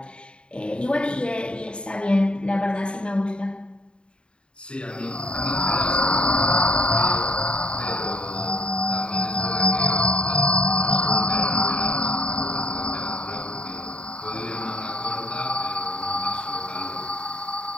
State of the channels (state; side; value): late; right; 0.053 ms